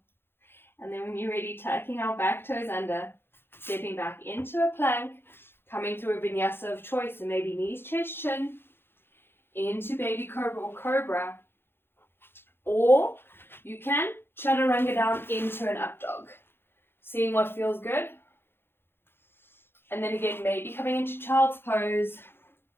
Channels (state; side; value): late; right; 0.11 ms